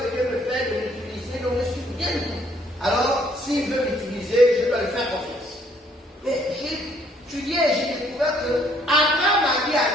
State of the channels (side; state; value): both; normal; correlation 0.64